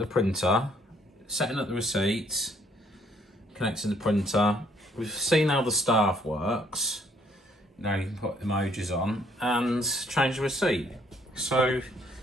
printer, setting up the receipts, connecting the printer. We've seen how the staff works. Now you can put emojis on and change the receipt. So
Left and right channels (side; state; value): both; normal; correlation 0.65